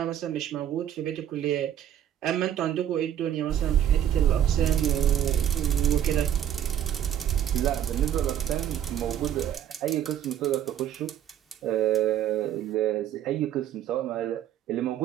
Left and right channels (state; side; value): quieter; left; 10.5 dB